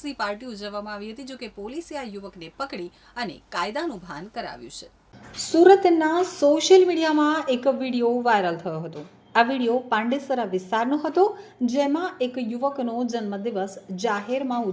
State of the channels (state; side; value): identical; both; correlation 1.00